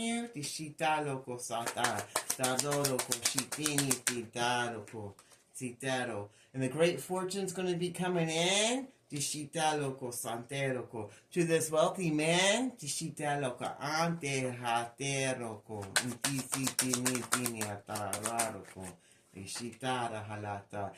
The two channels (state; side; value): identical; both; correlation 1.00